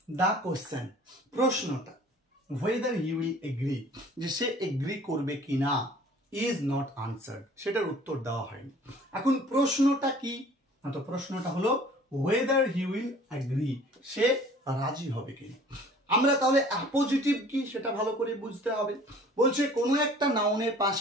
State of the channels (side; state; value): both; normal; correlation 0.50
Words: the question প্রশ্নটা whether he will agree যে সে এগ্রি করবে কিনা is not answered সেটার উত্তর দেওয়া হয়নি। এখন প্রশ্নটা কি না তো প্রশ্নটা হলো whether he will agree সে রাজি হবে কিনা। আমরা তাহলে অ্যাপোজিটিভ কি সেটা ভালো করে বুঝতে হবে। বলছে কোনো একটা নাউনের